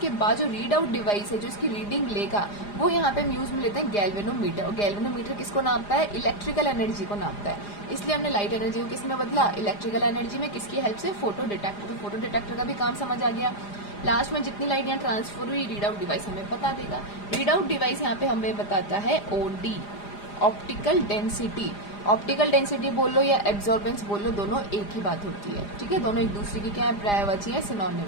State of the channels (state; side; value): late; right; 4.9 ms